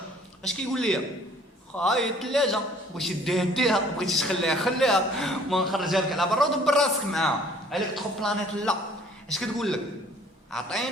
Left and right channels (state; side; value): normal; both; correlation 0.55